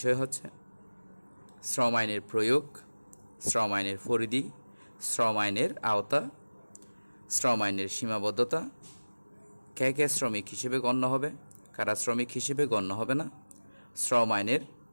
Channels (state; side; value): inverted; both; correlation -1.00